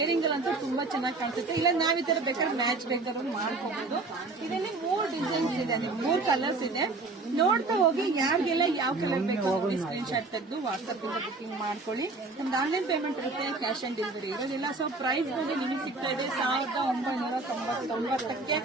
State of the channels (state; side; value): quieter; left; 3.6 dB